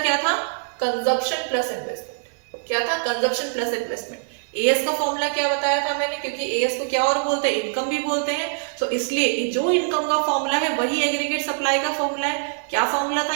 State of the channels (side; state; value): left; silent; digital silence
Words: क्या था? Consumption plus investment. क्या था? Consumption plus investment. एएस का फॉर्मूला क्या बताया था मैंने, क्योंकि एएस को क्या और बोलते हैं, इनकम भी बोलते हैं। सो इसलिए जो इनकम का फॉर्मूला है वही एग्रीगेट सप्लाई का फॉर्मूला है। क्या फॉर्मूला था